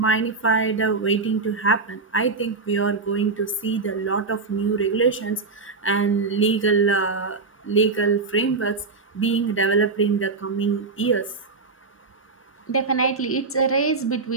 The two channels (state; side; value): quieter; left; 4.2 dB